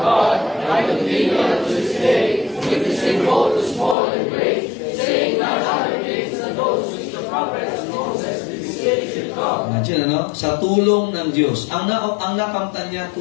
I continue unto this day, witnessing both to small and great, saying not other things than those which the prophets of Moses did say should come. Imagine, ano? Sa tulong ng Diyos. Ang nakamtan niya,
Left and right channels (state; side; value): drops out; right; at 4.0 s